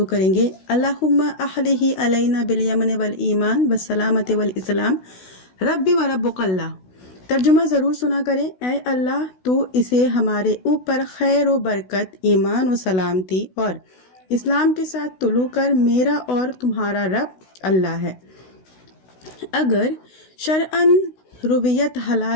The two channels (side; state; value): right; late; 16 ms